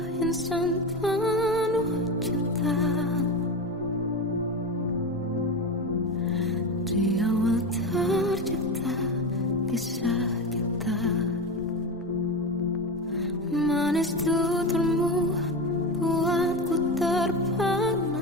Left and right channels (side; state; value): both; normal; correlation 0.21